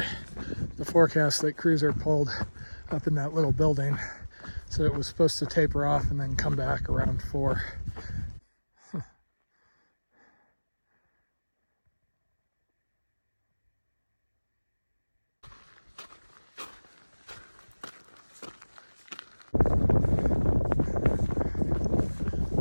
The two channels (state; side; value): inverted; both; correlation -1.00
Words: The forecast that Cruiser pulled up in that little building said it was supposed to taper off and then come back around 4.